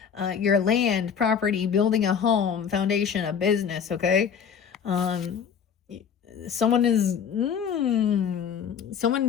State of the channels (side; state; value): right; quieter; 7.4 dB